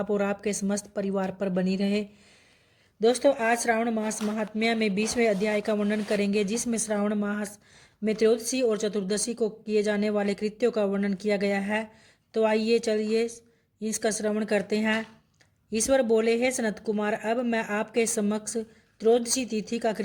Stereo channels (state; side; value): identical; both; correlation 1.00